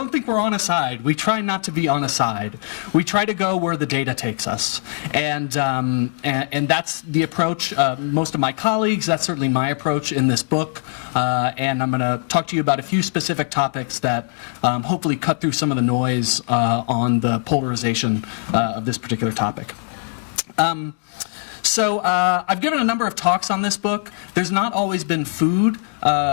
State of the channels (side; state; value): right; silent; digital silence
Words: think we're on a side. We try not to be on a side. We try to go where the data takes us, and that's the approach. Most of my colleagues, that's certainly my approach in this book. And I'm going to talk to you about a few specific topics that hopefully cut through some of the noise on the polarization of this particular topic. So I've given a number of talks on this book. There's not always been food